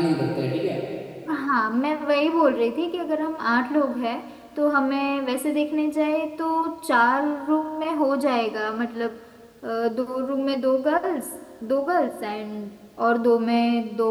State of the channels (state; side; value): identical; both; correlation 1.00